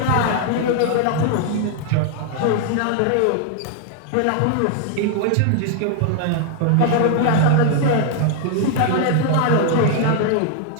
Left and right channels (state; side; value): different; both; correlation 0.00